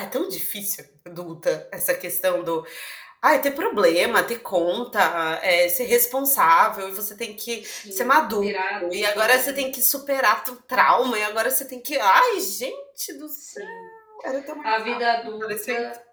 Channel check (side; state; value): both; identical; correlation 1.00